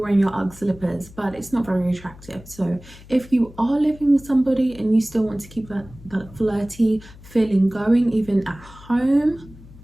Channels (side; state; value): left; noise; hum, 20 dB below the sound